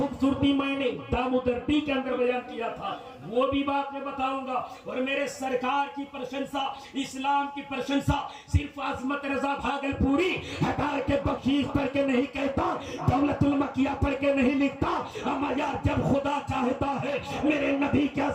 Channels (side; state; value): both; identical; correlation 1.00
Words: मैंने दामोदर डी के अंदर बयान किया था, वो भी बात मैं बताऊंगा। और मेरे सरकार की प्रशंसा, इस्लाम की प्रशंसा सिर्फ अजमत रजा भागलपुरी हटा के बख्शीश पढ़ के नहीं कहता, दौलतुल मकिया पढ़ के नहीं लिखता। अमा यार जब खुदा चाहता है मेरे नबी की